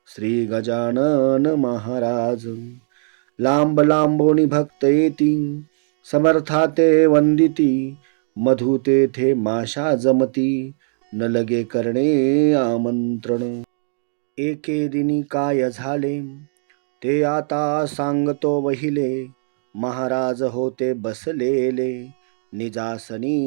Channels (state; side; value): silent; left; digital silence